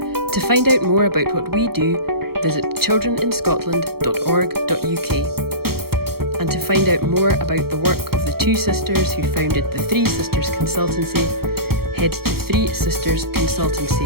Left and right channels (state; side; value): late; left; 0.95 ms